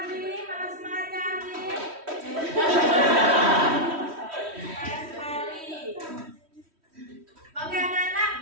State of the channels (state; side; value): late; left; 3.1 ms